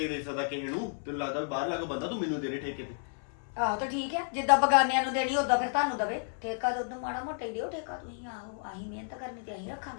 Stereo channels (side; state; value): right; silent; 57 dB below the other